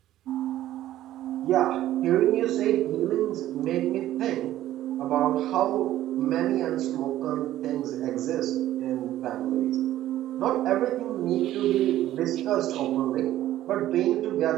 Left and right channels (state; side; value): quieter; left; 13.6 dB